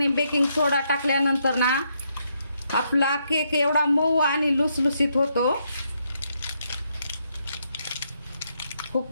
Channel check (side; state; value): both; inverted; correlation -0.77